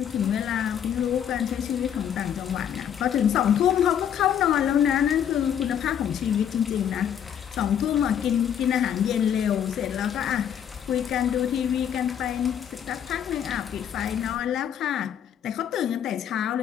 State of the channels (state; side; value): quieter; right; 9.2 dB